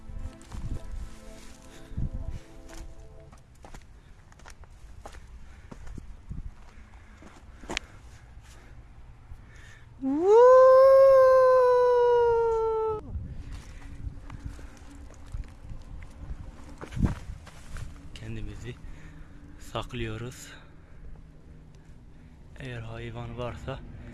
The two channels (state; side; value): identical; both; correlation 1.00